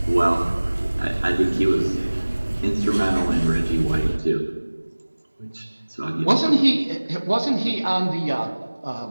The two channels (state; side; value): inverted; both; correlation -1.00